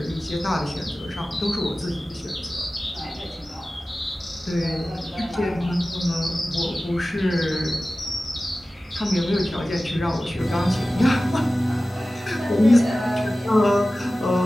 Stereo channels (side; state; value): both; normal; correlation 0.96